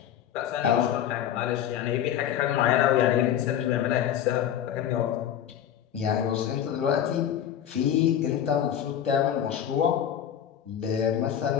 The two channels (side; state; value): right; quieter; 10.1 dB